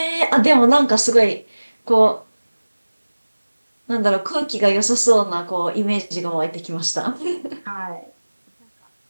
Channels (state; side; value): inverted; both; correlation -1.00